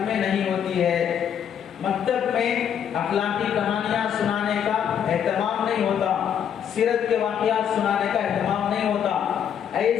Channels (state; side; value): quieter; right; 8.7 dB